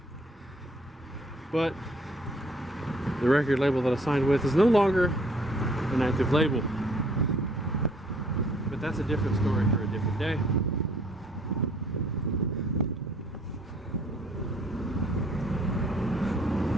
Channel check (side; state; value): both; normal; correlation 0.61